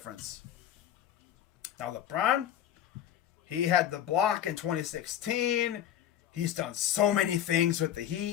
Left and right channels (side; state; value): right; quieter; 10.8 dB